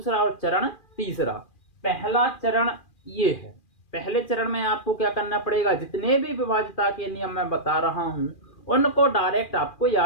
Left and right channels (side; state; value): right; late; 2.4 ms